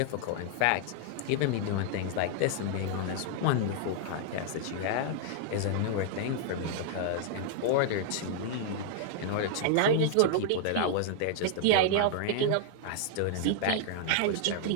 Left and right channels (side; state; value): both; different; correlation -0.01